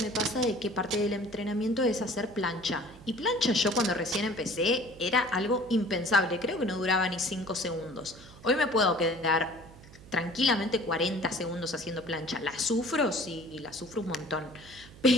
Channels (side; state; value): right; noise; hum, 20 dB below the sound